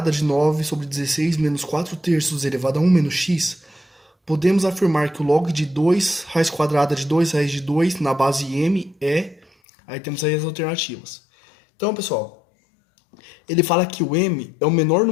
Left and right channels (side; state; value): right; drops out; at 9.5 s